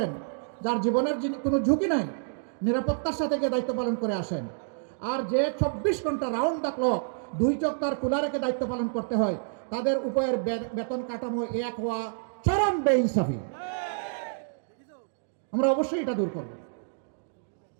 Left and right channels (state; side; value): silent; left; digital silence